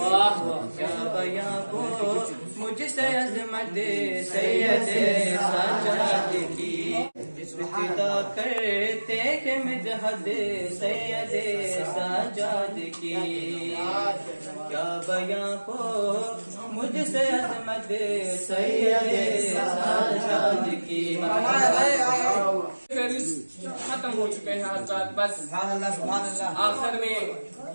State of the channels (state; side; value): inverted; both; correlation -1.00